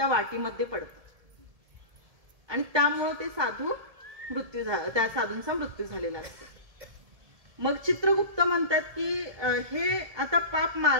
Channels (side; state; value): left; late; 1.7 ms